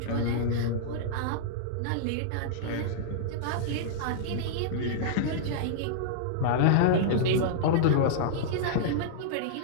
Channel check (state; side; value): different; both; correlation -0.02